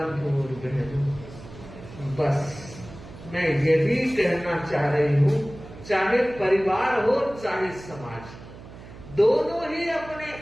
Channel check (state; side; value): noise; right; hum, 16 dB below the sound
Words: और बहनों, बस मैं यही कहना चाह रही हूँ, चाहे परिवार हो चाहे समाज, दोनों ही अपने